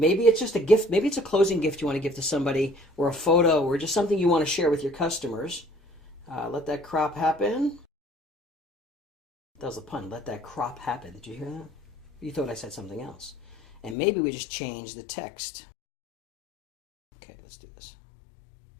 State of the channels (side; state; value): right; drops out; at 14.0 s